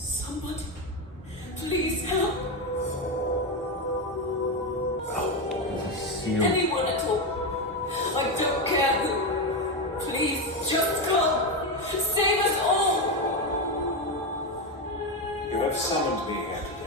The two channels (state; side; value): normal; both; correlation 0.11